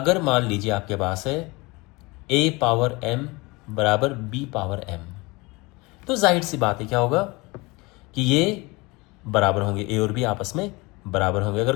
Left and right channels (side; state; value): right; quieter; 24.5 dB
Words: मान लीजिए आपके पास है a⁻m बराबर b⁻m, तो जाहिर सी बात है क्या होगा कि ये बराबर होंगे, a और b आपस में बराबर होंगे।